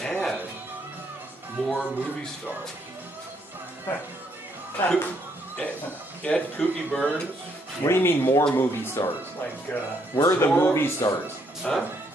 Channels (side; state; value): both; normal; correlation 0.72